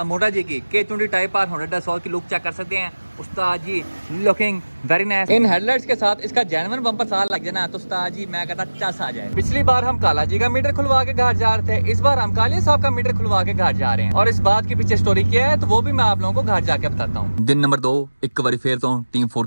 मोटा जी की K20 टाइप आर 100 की लुक चेक कर सकते हैं। उस्ताद जी लुकिंग वेरी नाइस। इन हेडलाइट्स के साथ इसका जेन्युइन बम्पर साल लग जाना तो उस्ताद जी मैं कहता चस आ जाए। पिछली बार हम काला जी का मीटर खुलवा के घर जा रहे थे, इस बार हम कालिया साहब का मीटर खुलवा के घर जा रहे हैं और इस बात के पीछे स्टोरी क्या है तो वो भी मैं आप लोगों को घर जाके बताता हूँ। दिन नंबर 2 एक बार फिर तो टीम 4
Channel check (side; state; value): both; inverted; correlation -1.00